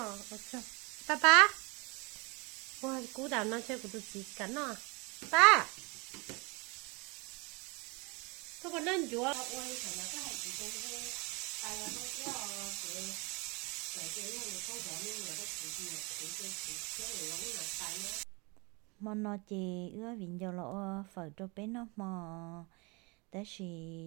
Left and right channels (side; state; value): left; quieter; 28.7 dB